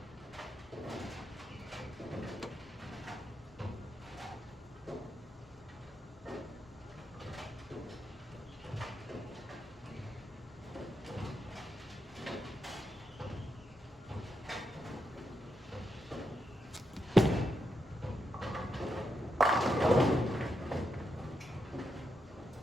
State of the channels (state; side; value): normal; both; correlation 0.84